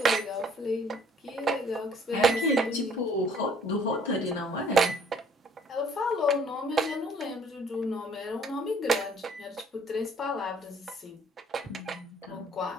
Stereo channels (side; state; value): both; normal; correlation 0.58